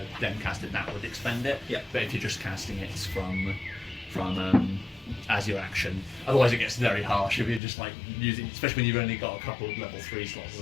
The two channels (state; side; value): drops out; right; at 7.6 s